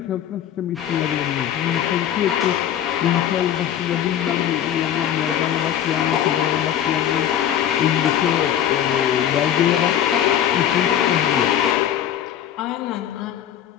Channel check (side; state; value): right; quieter; 10.4 dB